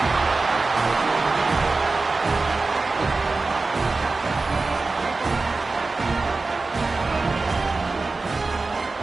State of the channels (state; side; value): quieter; left; 3.7 dB